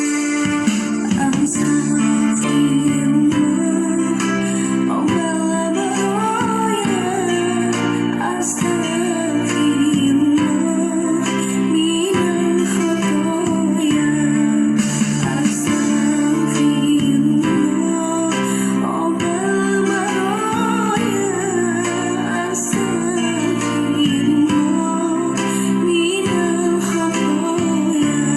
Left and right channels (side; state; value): both; identical; correlation 1.00